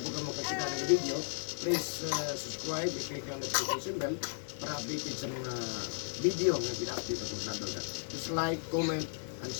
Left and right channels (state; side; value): silent; right; digital silence